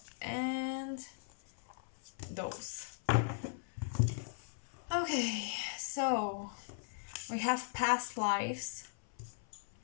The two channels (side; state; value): right; silent; 52 dB below the other